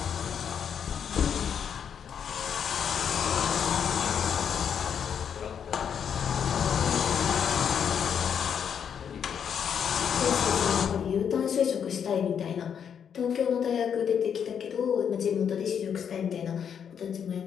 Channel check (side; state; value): right; quieter; 7.9 dB